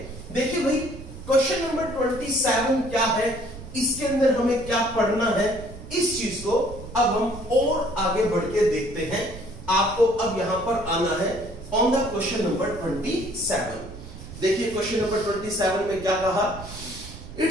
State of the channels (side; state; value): right; noise; rumble, 13 dB below the sound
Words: देखिए भाई, क्वेश्चन नंबर 27 क्या है, इसके अंदर हमें क्या पढ़ना है, इस चीज को अब हम और आगे बढ़ के देखते हैं। आपको अब यहां पर आना है ऑन द क्वेश्चन नंबर 27। देखिए क्वेश्चन नंबर 27 में क्या कहा, it